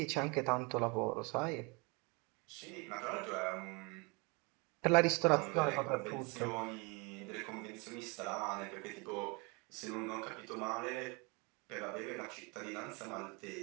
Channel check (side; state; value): left; quieter; 29.7 dB